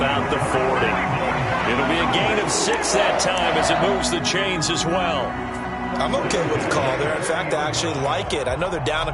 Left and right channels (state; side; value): identical; both; correlation 1.00